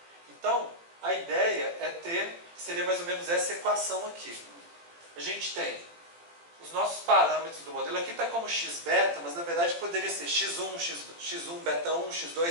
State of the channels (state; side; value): late; left; 18 ms